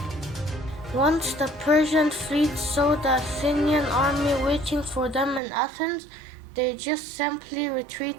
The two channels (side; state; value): left; drops out; at 5.4 s